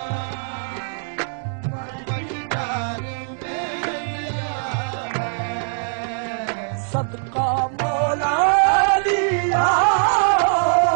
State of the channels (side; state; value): left; silent; 62 dB below the other